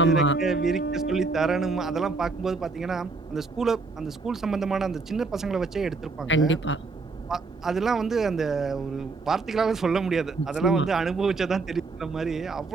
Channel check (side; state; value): left; quieter; 4.0 dB